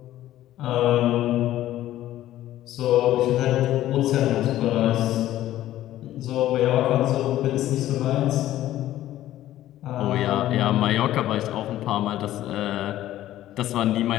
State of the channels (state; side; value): quieter; right; 13.8 dB